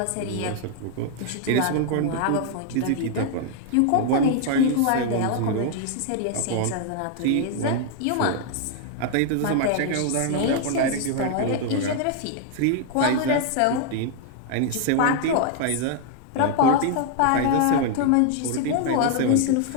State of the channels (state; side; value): different; both; correlation 0.00